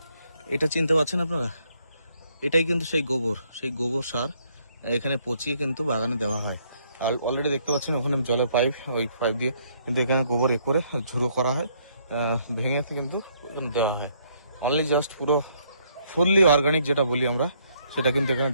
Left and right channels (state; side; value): inverted; both; correlation -0.69